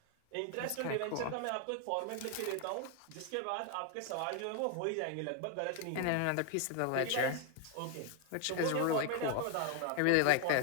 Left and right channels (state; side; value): different; both; correlation 0.01